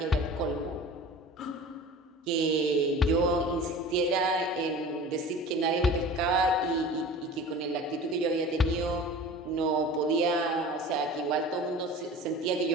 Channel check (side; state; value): both; normal; correlation 0.39